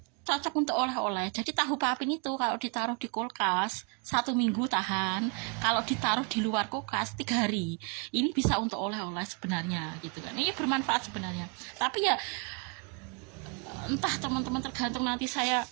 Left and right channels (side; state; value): left; quieter; 32.8 dB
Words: cocok untuk oleh-oleh. Jadi tahu papin itu kalau ditaruh di kulkas 1 minggu tahan, kalau ditaruh di luar kulkas 3 hari. Ini bisa untuk oleh-oleh sebenarnya gitu kan. Ini bermanfaat sebenarnya. Tapi ya entah teman-teman, tergantung nanti saya